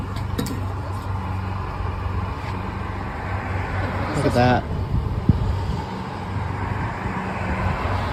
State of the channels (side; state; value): both; identical; correlation 1.00